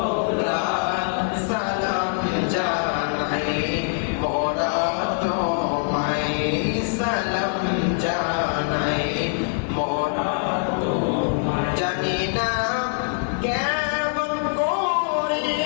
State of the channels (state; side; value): silent; right; 63 dB below the other